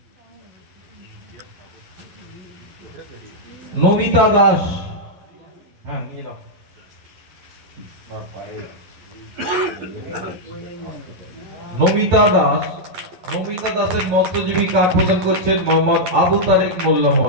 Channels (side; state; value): left; late; 11 ms